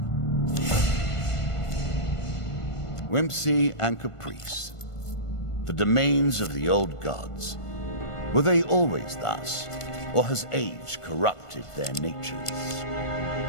Whimsy and caprice, the domains of the old gods. Were they always thus, or has age corrupted their natures?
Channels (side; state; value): right; late; 1.5 ms